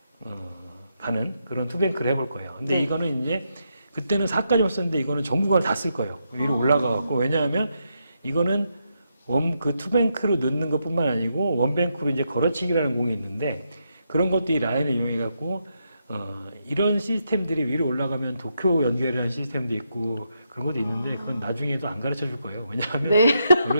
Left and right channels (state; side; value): inverted; both; correlation -0.81